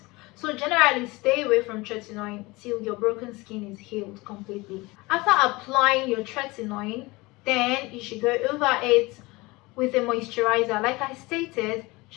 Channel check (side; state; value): right; quieter; 22.8 dB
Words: So generally stay away from tretinoin till your broken skin is healed completely. After applying your tretinoin, then you should go over it with a moisturizer. Like I stated,